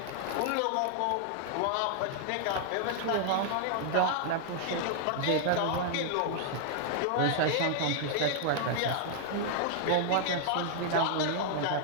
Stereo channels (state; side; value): different; both; correlation -0.01